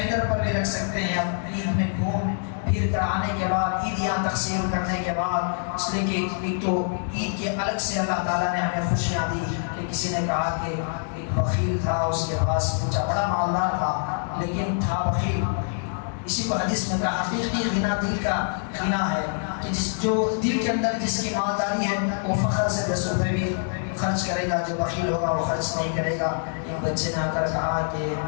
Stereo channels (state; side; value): silent; right; digital silence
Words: پر بھی رکھ سکتے ہیں. اب عید میں گھوم پھر کر آنے کے بعد، عیدیاں تقسیم کرنے کے بعد، اس لیے کہ ایک تو عید کے الگ سے اللہ تعالیٰ نے ہمیں خوشیاں دی کہ کسی نے کہا کہ ایک بخیل تھا، اس کے پاس پوچھا، بڑا مالدار تھا لیکن تھا بخیل. اسی کو حدیث میں کہا حقیقی غنا دل کا غنا ہے کہ جو دل کے اندر جس کی مالداری ہے وہ فخر سے 10 روپے بھی خرچ کرے گا. جو بخیل ہوگا وہ خرچ نہیں کرے گا. ایک بچے نے آ کر کہا کہ